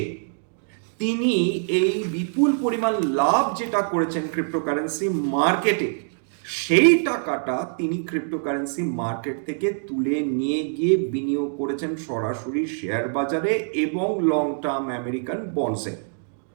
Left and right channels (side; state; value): left; silent; digital silence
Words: তিনি এই বিপুল পরিমাণ লাভ যেটা করেছেন ক্রিপ্টোকারেন্সি মার্কেটে, সেই টাকাটা তিনি ক্রিপ্টোকারেন্সি মার্কেট থেকে তুলে নিয়ে গিয়ে বিনিয়োগ করেছেন সরাসরি শেয়ার বাজারে এবং লং টার্ম আমেরিকান বন্ডসে।